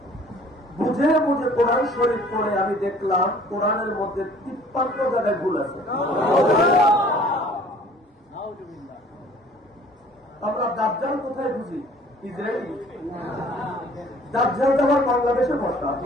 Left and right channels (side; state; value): both; normal; correlation 0.53